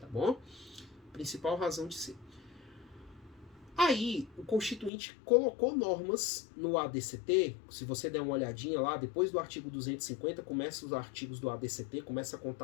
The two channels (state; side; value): drops out; right; at 4.9 s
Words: bom? Principal razão de ser. Aí, o Constituinte colocou normas no ADCT, se você der uma olhadinha lá, depois do artigo 250, começa os artigos do ADCT, começa a